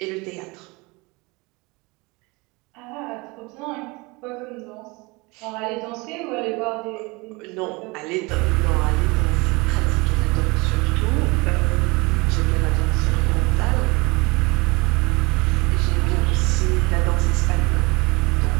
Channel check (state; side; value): quieter; left; 25.5 dB